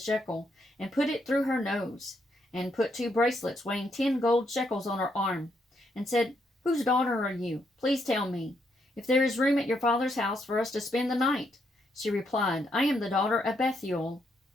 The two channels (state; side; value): normal; both; correlation 0.76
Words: and put it through her nose, and put 2 bracelets weighing 10 gold shekels on her arm, and said, "Whose daughter are you? Please tell me, if there is room at your father's house for us to spend the night." She replied, "I am the daughter of Bethuel,